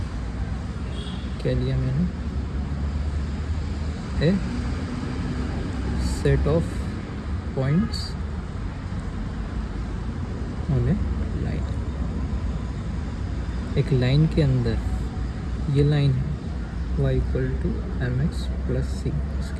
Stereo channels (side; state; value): both; identical; correlation 1.00